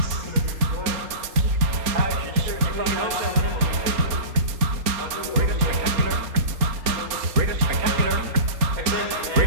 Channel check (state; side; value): late; left; 4.3 ms